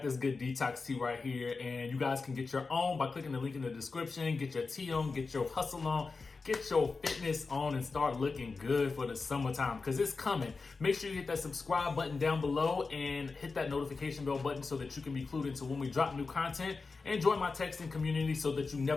this good detox tea right here, and you guys can get your own by clicking the link in the description. Get your tea on, get your hustle on, get your fitness on, and start looking good for the summertime, because it's coming. Make sure you hit that subscribe button down below and hit that notification bell button so that you can be clued into when we drop new content, and join my texting community so that you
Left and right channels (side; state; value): right; quieter; 4.2 dB